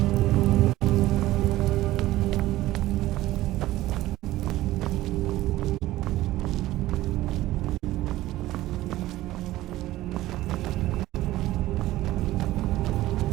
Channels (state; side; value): quieter; left; 16.1 dB